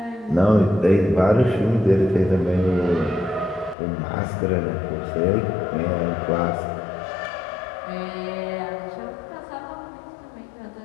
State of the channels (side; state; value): right; drops out; at 3.8 s